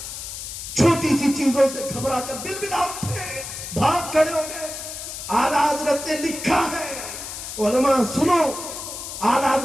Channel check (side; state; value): left; noise; hiss, 8 dB below the sound